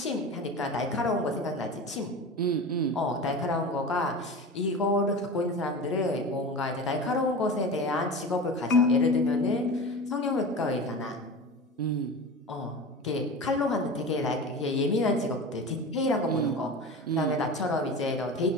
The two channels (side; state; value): both; normal; correlation 0.31